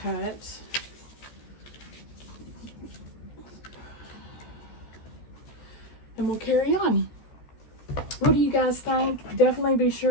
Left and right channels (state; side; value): late; right; 14 ms